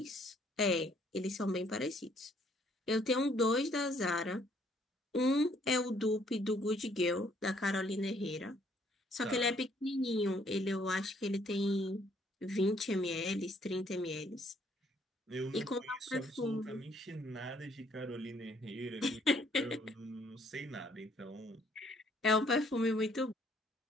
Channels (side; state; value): both; normal; correlation 0.65